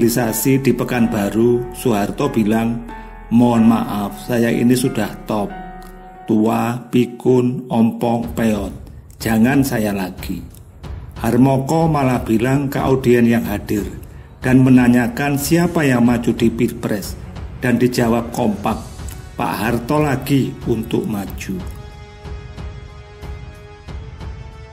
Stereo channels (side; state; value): both; identical; correlation 1.00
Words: di Pekanbaru, Soeharto bilang, "Mohon maaf, saya ini sudah top, tua, pikun, ompong, peot, jangan saya lagi." Harmoko malah bilang ke audien yang hadir dan menanyakan siapa yang maju di Pilpres, dan dijawab kompak, Pak Harto lagi untuk maju.